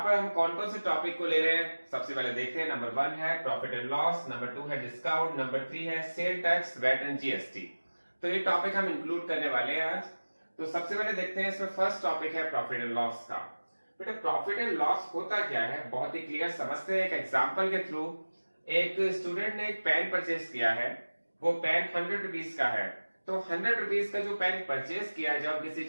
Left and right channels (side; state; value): both; inverted; correlation -1.00